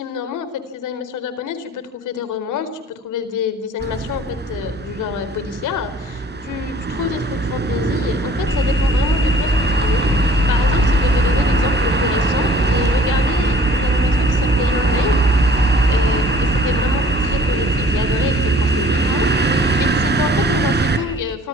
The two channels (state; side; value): normal; both; correlation 0.52